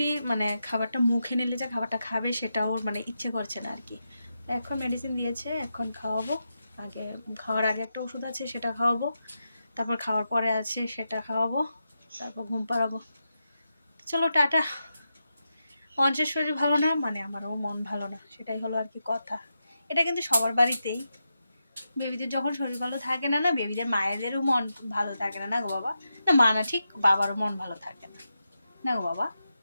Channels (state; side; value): inverted; both; correlation -0.88